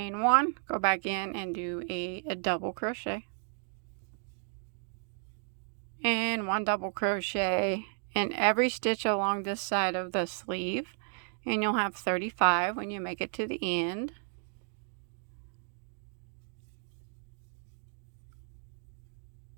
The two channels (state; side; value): silent; left; 56 dB below the other